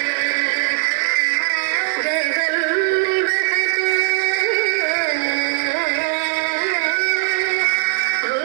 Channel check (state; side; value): silent; left; 63 dB below the other